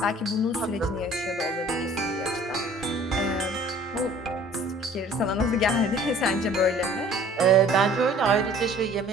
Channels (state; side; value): normal; both; correlation 0.51